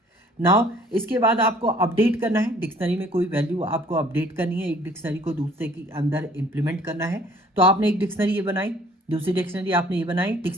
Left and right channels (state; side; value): normal; both; correlation 0.56